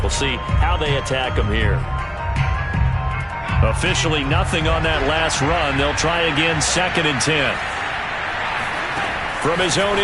We'll see how they attack them here. Officially nothing on that last run. They'll try again, 2nd and 10. From his own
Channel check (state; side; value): identical; both; correlation 1.00